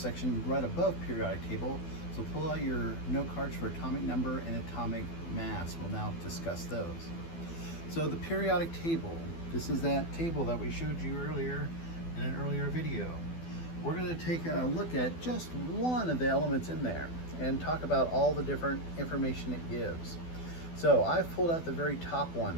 right above periodic table. So pull out your note cards for atomic number and atomic mass. We'll now discuss those. So the periodic table, this is that table that we showed you earlier in an earlier video. We're going to take a look at just one of the elements in there and talk about all the different information it gives. So I've pulled out the very top one,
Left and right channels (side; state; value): right; late; 12 ms